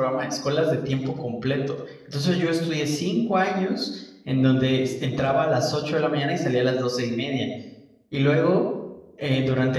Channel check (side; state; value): both; identical; correlation 1.00